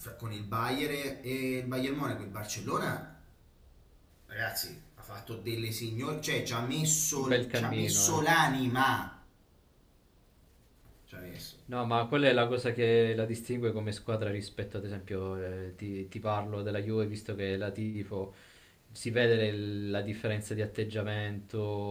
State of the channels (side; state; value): both; identical; correlation 1.00